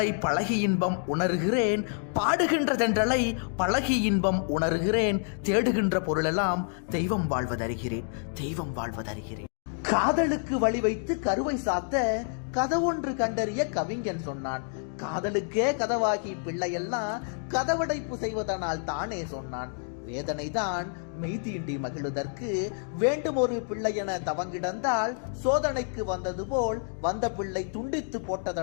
பழகி இன்பம் உணர்கிறேன், பாடுகின்ற தென்றலை பழகி இன்பம் உணர்கிறேன். தேடுகின்ற பொருளெல்லாம் தெய்வம் வாழ்வதறிகிறேன், தெய்வம் வாழ்வதறிகிறேன். காதலுக்கு வழி வைத்து கருவை சாத்த கதவொன்று கண்டறிய கவிஞன் சொன்னான். காதலுக்கே கதவாகி பிள்ளையெல்லாம் கதவடைப்பு செய்வதனால் தானே சொன்னான். வேதனைதான் மெய்தீண்டி மகிழுதற்கு வேண்டும் ஒரு பிள்ளை என தவங்கிடந்தால் சோதனைக்கு வந்தது போல் வந்த பிள்ளை துண்டித்து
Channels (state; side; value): silent; right; 59 dB below the other